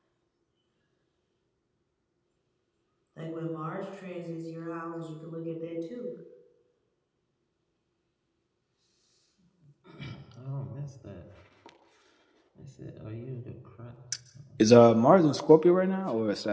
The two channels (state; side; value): identical; both; correlation 1.00